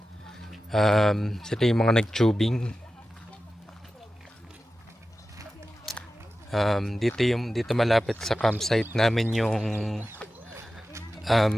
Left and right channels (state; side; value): normal; both; correlation 0.93